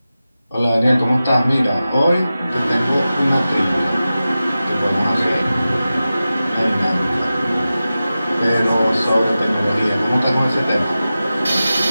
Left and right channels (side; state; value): both; inverted; correlation -0.94